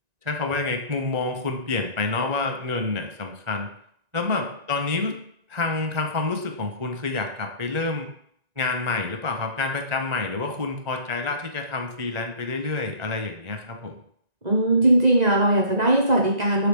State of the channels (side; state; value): left; late; 1.9 ms